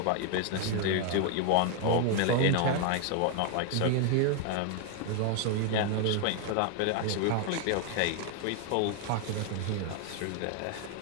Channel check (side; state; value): both; different; correlation 0.01